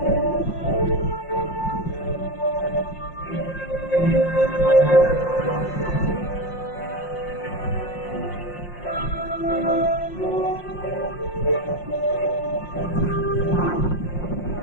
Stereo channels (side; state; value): right; late; 5.6 ms